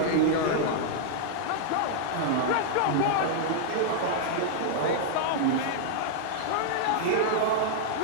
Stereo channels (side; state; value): both; different; correlation -0.01